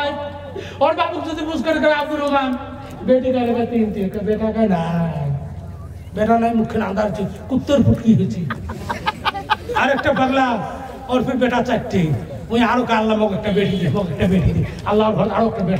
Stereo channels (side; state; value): both; identical; correlation 1.00